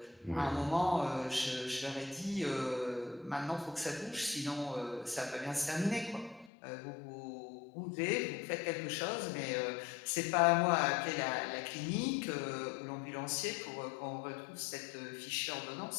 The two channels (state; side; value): drops out; right; at 6.5 s